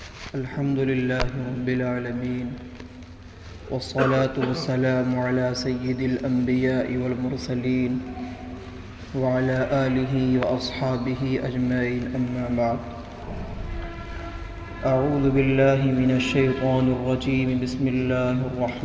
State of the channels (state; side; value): identical; both; correlation 1.00